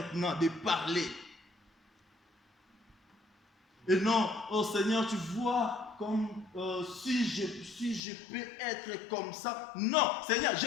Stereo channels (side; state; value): right; drops out; at 8.0 s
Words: de parler. Et non, oh Seigneur, tu vois, comme si je peux être comme ça. Non, Seigneur, je